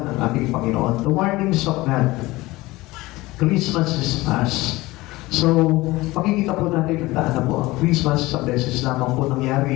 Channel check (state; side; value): quieter; right; 19.9 dB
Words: ng ating Panginoon. The warnings of God. Christmas is past. So, makikita po natin na po ang Christmas sa beses lamang po